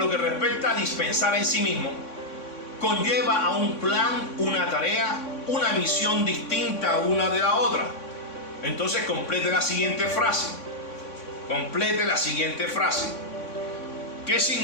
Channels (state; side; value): late; right; 3.6 ms